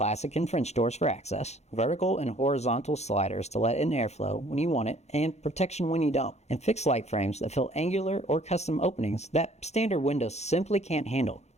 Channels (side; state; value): right; late; 0.32 ms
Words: and French doors for access, vertical and horizontal sliders to let in airflow when you want it, and protection when you don't, and fixed light frames that fill angular or custom openings that standard windows simply can't handle.